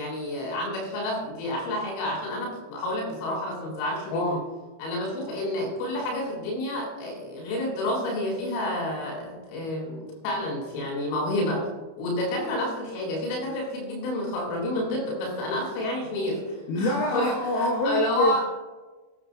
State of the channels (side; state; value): right; late; 31 ms